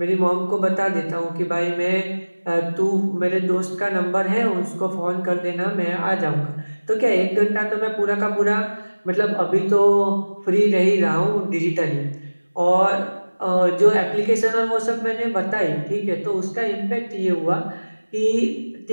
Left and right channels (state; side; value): inverted; both; correlation -1.00